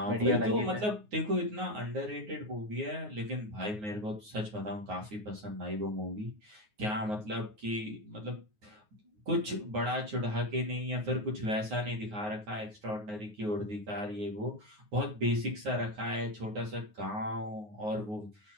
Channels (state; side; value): late; left; 9.5 ms